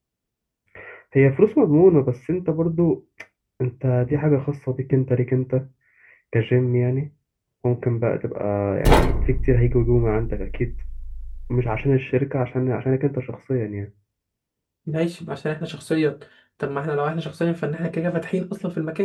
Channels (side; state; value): both; identical; correlation 1.00